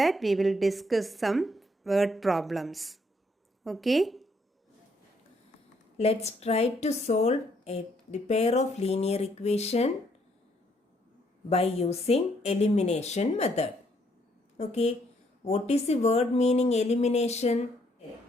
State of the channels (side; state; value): both; normal; correlation 0.70